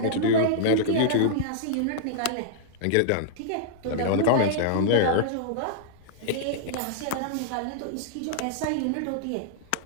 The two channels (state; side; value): different; both; correlation -0.01